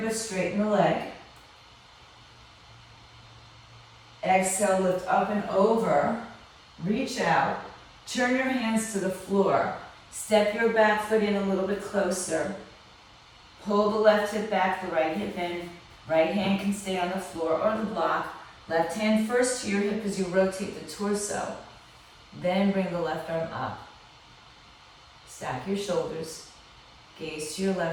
but straighten the leg. Exhale, lift up and over. Reach out. Turn your hands to the floor. Step your back foot in a little bit closer. Pull the left hip back, the right hip in. Right hand can stay on the floor or the block. Left hand first to your hip as you rotate the torso. Then bring the left arm up. Stack your shoulders. Gaze to your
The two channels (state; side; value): identical; both; correlation 1.00